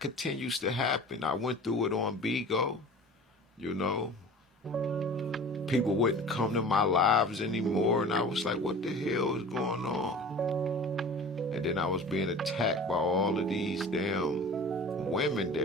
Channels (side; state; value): both; normal; correlation 0.40